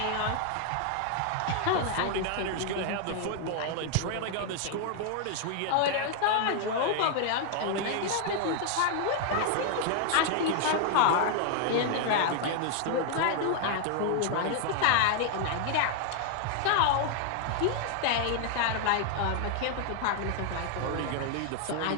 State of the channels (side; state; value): both; different; correlation 0.00